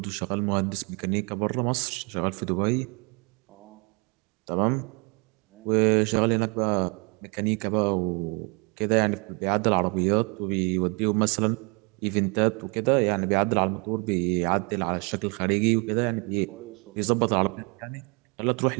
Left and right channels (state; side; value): quieter; left; 32.5 dB